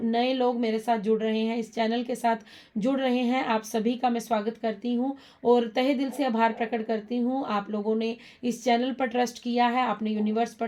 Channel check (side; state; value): both; identical; correlation 1.00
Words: नए लोग मेरे साथ जुड़ रहे हैं, इस चैनल के साथ जुड़ रहे हैं, आप सभी का मैं स्वागत करती हूँ और तहे दिल से आभार प्रकट करती हूँ। आप लोगों ने इस चैनल पर ट्रस्ट किया है, आपने यूनिवर्स